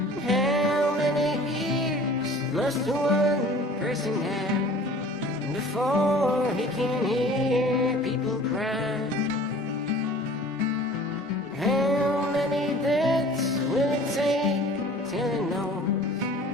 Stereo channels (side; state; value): both; normal; correlation 0.46